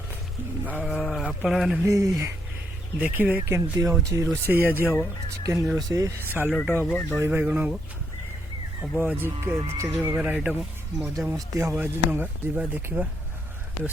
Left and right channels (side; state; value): both; normal; correlation 0.76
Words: आपण मैंने भी देखिए केमती हूँ रोषे आज हम चिकेन रोषे सालट हम दही बैगण हम आज चार प्रकार आइटम मजा मस्ती हम आज नंगा जा देखा